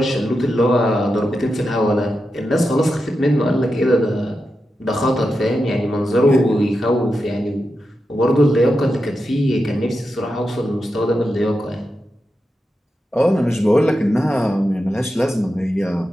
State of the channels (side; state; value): both; normal; correlation 0.89